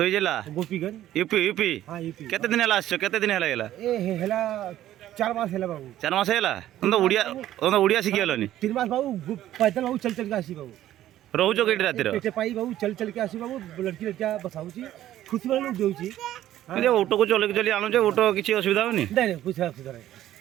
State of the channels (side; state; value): left; quieter; 13.1 dB